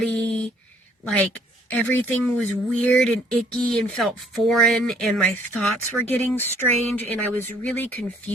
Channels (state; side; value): normal; both; correlation 0.62